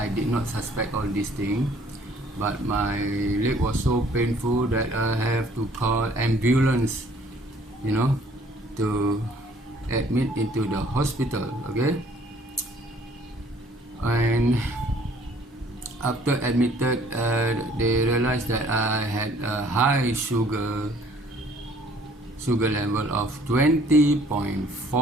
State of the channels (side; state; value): both; normal; correlation 0.58